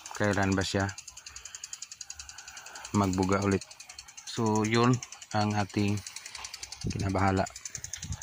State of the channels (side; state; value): both; identical; correlation 1.00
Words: kailan ba siya magbuga ulit. So yun ang ating kinabahala.